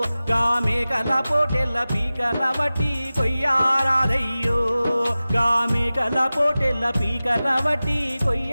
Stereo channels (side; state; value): both; inverted; correlation -0.96